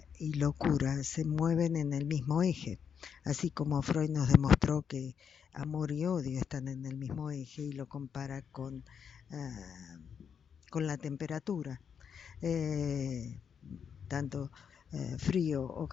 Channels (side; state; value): right; quieter; 7.3 dB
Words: y locura se mueven en el mismo eje, así como Freud nos demostró que amor y odio están en el mismo eje y lo compara con la temperatura. Eh, tanto frío o